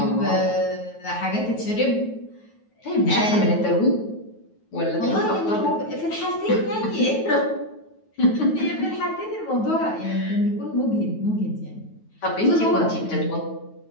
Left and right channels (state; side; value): late; right; 9.3 ms